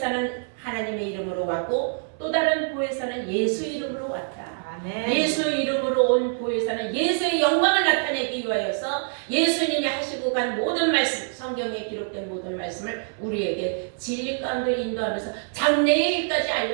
하나님의 이름으로 왔고 또 다른 보혜사는 예수 이름으로 왔다. 아멘. 예수 이름으로 온 보혜사는 예수의 영광을 나타내기 위하여서 예수님이 하시고 간 모든 말씀, 성경에 기록된 모든 말씀을 우리에게 진리 가운데 인도하면서 장래의 일까지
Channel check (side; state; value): left; silent; 62 dB below the other